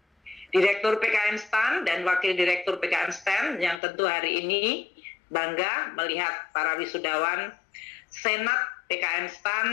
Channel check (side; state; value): right; drops out; at 3.8 s